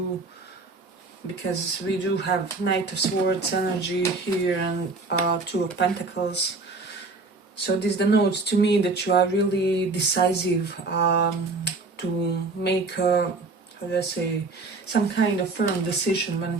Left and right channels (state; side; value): quieter; left; 3.7 dB